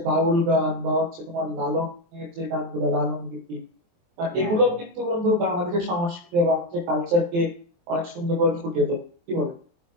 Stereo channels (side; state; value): left; late; 23 ms